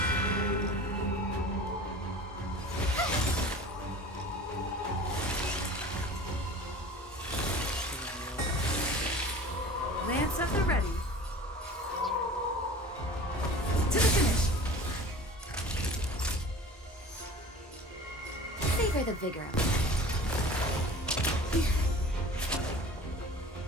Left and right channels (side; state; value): both; normal; correlation 0.41